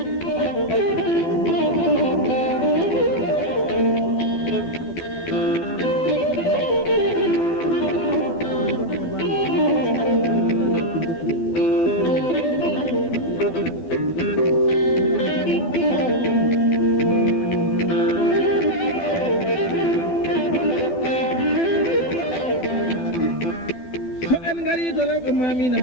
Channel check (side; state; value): right; late; 12 ms